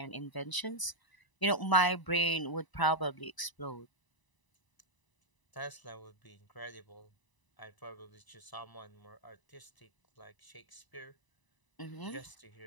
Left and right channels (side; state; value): right; late; 1.0 ms